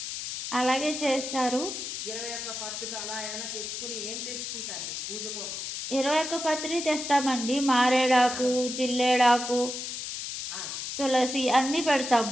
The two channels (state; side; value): noise; left; hiss, 6 dB below the sound